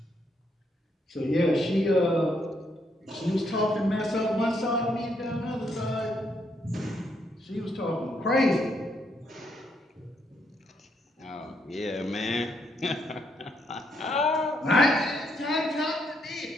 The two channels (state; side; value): normal; both; correlation 0.75